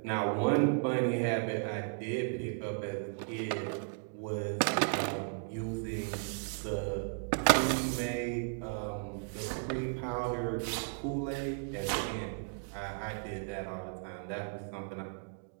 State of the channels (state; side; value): silent; left; 54 dB below the other